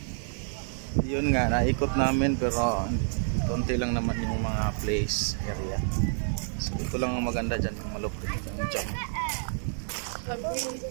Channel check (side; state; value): left; silent; 59 dB below the other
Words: Yun nga, naikot namin pero konti lang naman yung mga place area. So ito lang ang maganda dyan, yung malupit yung jump.